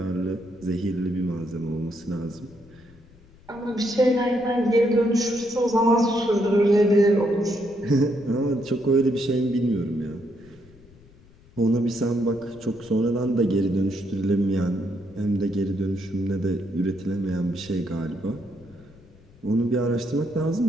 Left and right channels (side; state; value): left; noise; rumble, 25 dB below the sound